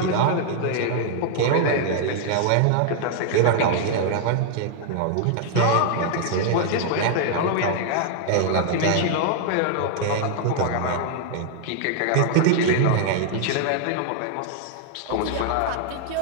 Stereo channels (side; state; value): both; different; correlation 0.00